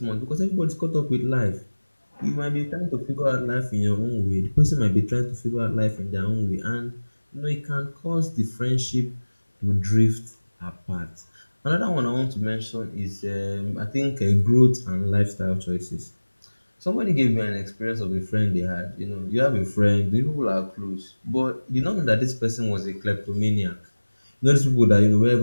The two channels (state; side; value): inverted; both; correlation -1.00